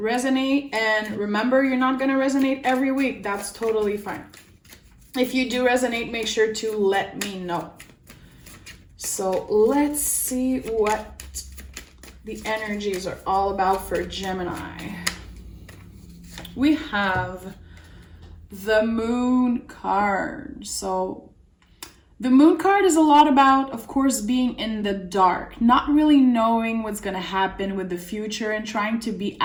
And remember, you're not going to resonate every week. That's totally fine. If you do resonate, make sure to let me know. So let's see what the energies are all about for Gemini. We have the Moon card. So the Moon card is a lot about, of course, being in the dark, not really knowing what's going to happen with the future and trying to be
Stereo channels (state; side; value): identical; both; correlation 1.00